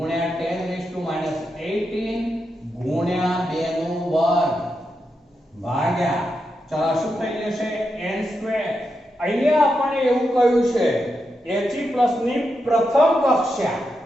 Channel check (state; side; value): normal; both; correlation 0.86